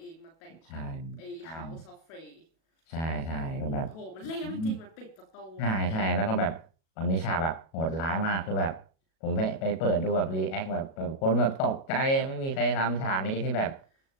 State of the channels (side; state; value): right; late; 37 ms